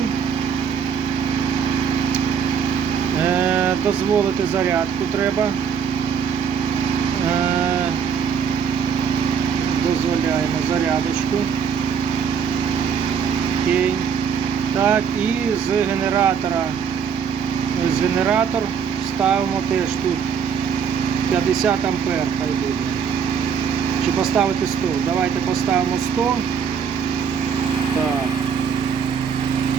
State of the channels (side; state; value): left; quieter; 7.0 dB